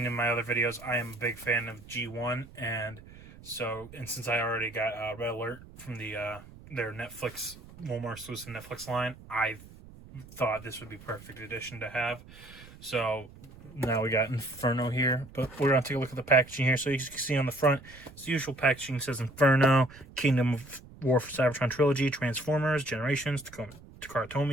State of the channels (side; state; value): right; noise; rumble, 19 dB below the sound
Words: in my other videos, I am a big fan of G1, and since I already got Red Alert from their Netflix, Walmart exclusive Netflix line, I thought this would be perfect addition to have. So now we got Inferno here, but we're going to take a look at the packaging here. So you can see on the front, it's the usual packaging. It says Inferno, Kingdom of War for Cybertron Trilogy, Transformers, Generations, Takara